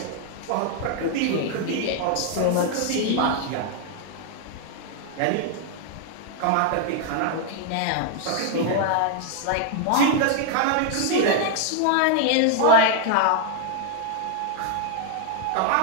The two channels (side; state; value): both; different; correlation 0.00